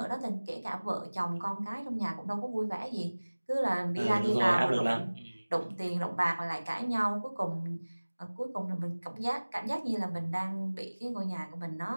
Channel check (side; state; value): both; inverted; correlation -1.00